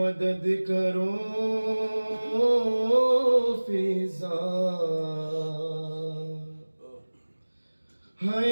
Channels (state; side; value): inverted; both; correlation -1.00